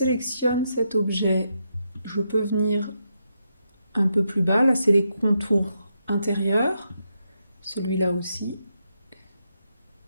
cet objet, je peux venir un peu plus bas. Là, c'est les contours intérieurs. Celui-là aussi.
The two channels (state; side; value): inverted; both; correlation -0.82